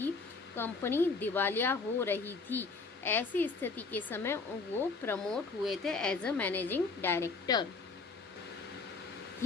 कंपनी दिवालिया हो रही थी। ऐसी स्थिति के समय वो प्रमोट हुए थे as a managing director.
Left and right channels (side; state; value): right; quieter; 4.3 dB